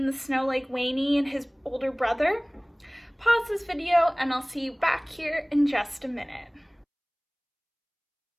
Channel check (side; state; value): both; identical; correlation 1.00